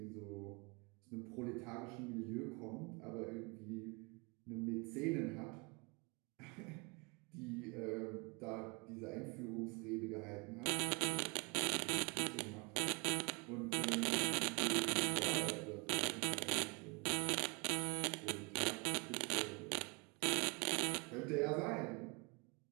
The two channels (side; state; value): left; quieter; 31.2 dB